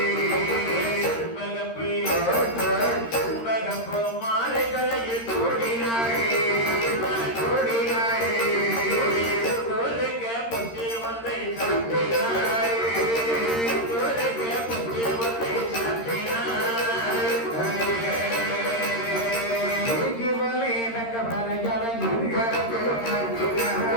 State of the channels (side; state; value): right; late; 13 ms